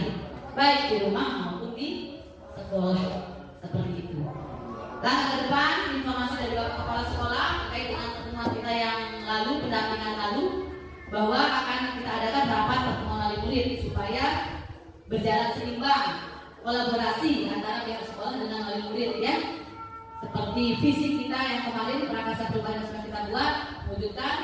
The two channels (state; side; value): identical; both; correlation 1.00